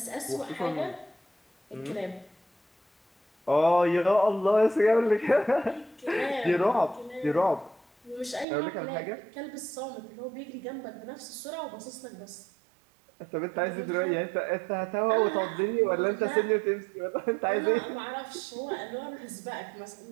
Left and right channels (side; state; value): left; drops out; at 8.5 s